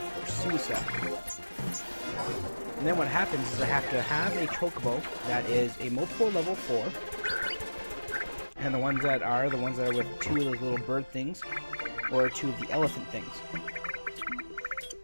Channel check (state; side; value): inverted; both; correlation -1.00